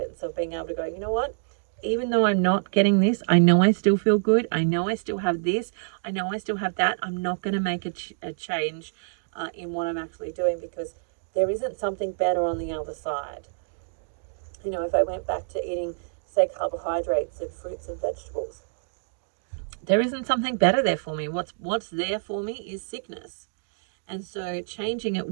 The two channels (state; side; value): silent; left; digital silence